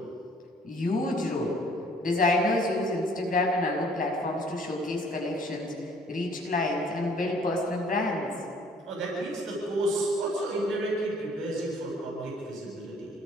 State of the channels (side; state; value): both; normal; correlation 0.58